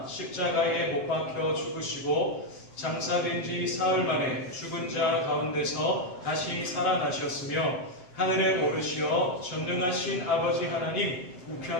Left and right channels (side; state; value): right; late; 7.6 ms